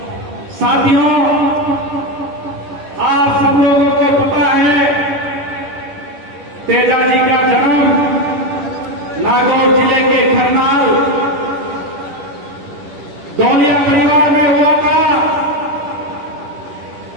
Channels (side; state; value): left; late; 10 ms